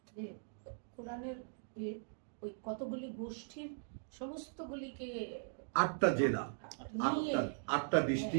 যে কোরআনের ওই কতগুলি গোষ্ঠীর সমস্তগুলিকে 8টা জেলা, নিয়ে 8টা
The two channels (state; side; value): silent; left; digital silence